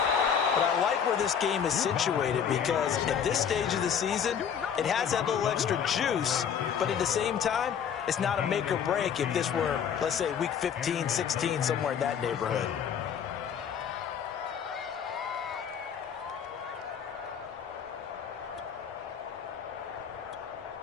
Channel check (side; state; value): right; quieter; 7.9 dB